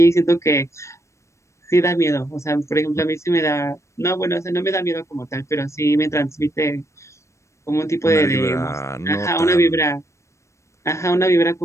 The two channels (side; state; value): right; late; 0.14 ms